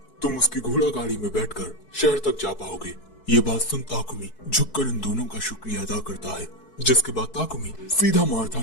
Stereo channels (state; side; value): late; right; 4.6 ms